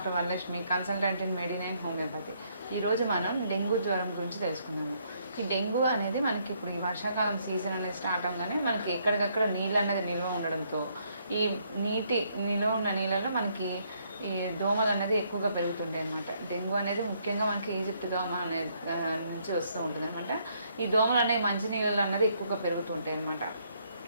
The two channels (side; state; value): both; inverted; correlation -0.71